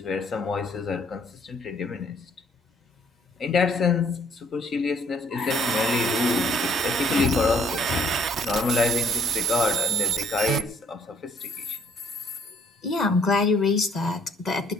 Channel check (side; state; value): both; normal; correlation 0.63